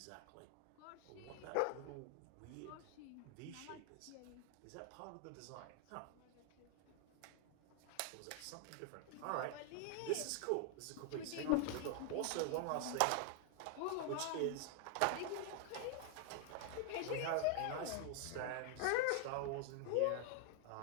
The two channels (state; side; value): different; both; correlation 0.00